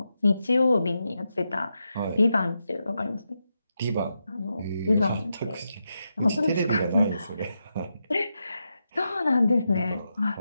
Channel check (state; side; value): inverted; both; correlation -0.86